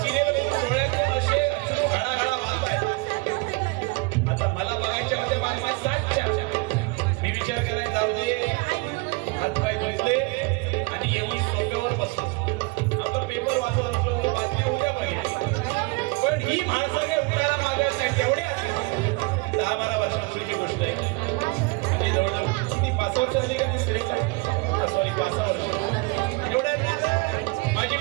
सिरियल डोळ्यातून असे घडाघडा वाहताय. आता मला बघायच्या होत्या बातम्या 7च्या. मी विचार करायला जाऊ दे, हातपाय धुतले आणि येऊन सोफ्यावर बसलो. आपला पेपर वाचत असलो, बातम्या उद्या बघितल्या. पण ही म्हाळसा काही उठायला मागत नाही. तेवढ्या 10-12 वर्षांपूर्वीची गोष्ट आहे. म्हणजे जवळजवळ किती 5 वर्ष झाली का ती स्त्रीला? सॉरी 5 वर्ष.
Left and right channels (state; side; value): quieter; left; 26.9 dB